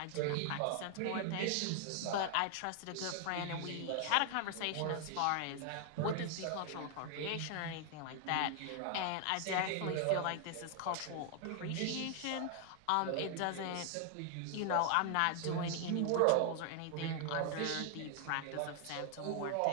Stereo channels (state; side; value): different; both; correlation 0.00